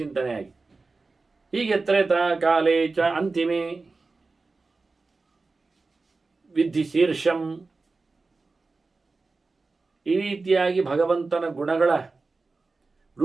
ಚಿಂತನೆಯಾಗಿ, ಹೀಗೆ ತ್ರೇತಾ ಕಾಲೇ ಚ ಅಂತಿಮೇ ವಿಧಿ ಶೀರ್ಷಂ, ಈ ರೀತಿಯಾಗಿ ಭಗವಂತನ ಗುಣಗಳ,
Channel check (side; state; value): left; quieter; 3.8 dB